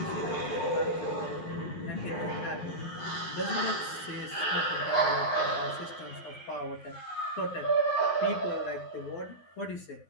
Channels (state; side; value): late; right; 12 ms